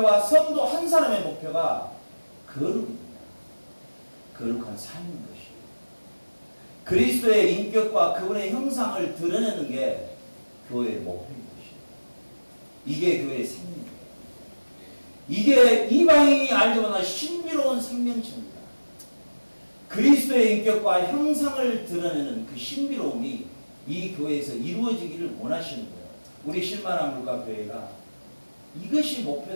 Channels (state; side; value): inverted; both; correlation -1.00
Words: 성도 한 사람의 목표가 거룩입니다. 거룩한 삶인 것이에요. 그리스도의 인격과 그분의 형상을 드러내는 게 교회의 목표인 것이에요. 이게 교회의 생명이에요. 이게 이방인이 알지 못한 신비로운 생명체입니다. 그리스도의 인격과 형상을 드러내는 그 신비로움이 이 교회에서 이루어지기를 원하시는 거예요. 우리 실만한 물가교회가 이것이